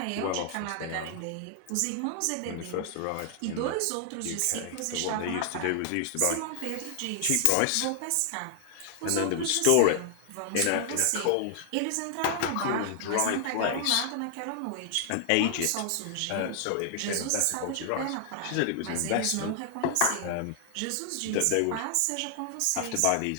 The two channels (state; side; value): different; both; correlation 0.00